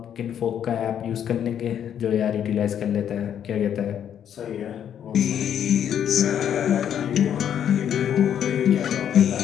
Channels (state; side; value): quieter; right; 9.3 dB